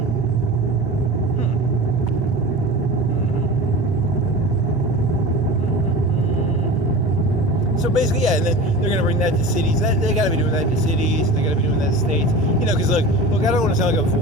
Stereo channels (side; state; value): both; normal; correlation 0.33